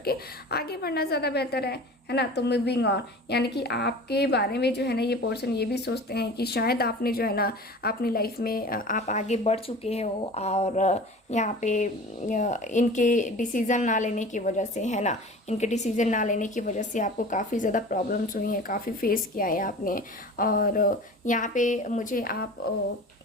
आगे बढ़ना ज़्यादा बेहतर है ना। तो मूविंग ऑन, यानी कि आपके बारे में जो है ना ये पर्सन ये भी सोचते हैं कि शायद आपने जो है ना अपनी लाइफ में आप आगे बढ़ चुके हो, और यहाँ पे इनके डिसीज़न ना लेने की वजह से, है ना, इनके डिसीज़न ना लेने की वजह से आपको काफ़ी ज़्यादा प्रॉब्लम्स हुई हैं, काफ़ी फेस किया है आपने। और यहाँ पे मुझे आप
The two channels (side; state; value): both; normal; correlation 0.39